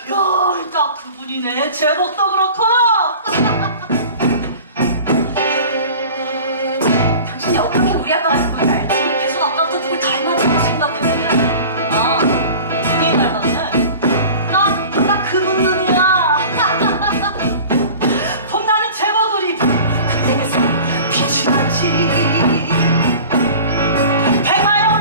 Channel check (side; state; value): both; inverted; correlation -0.40